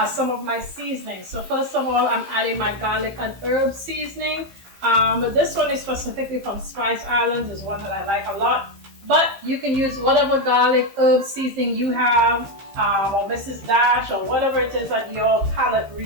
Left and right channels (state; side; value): late; left; 15 ms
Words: some of my seasonings. So first of all, I'm adding my garlic and herb seasoning. But this one is specifically from Spice Islands. Is one that I like a lot. But you can use whatever garlic herb seasoning you have, or Mrs. Dash, or whatever it is that your palate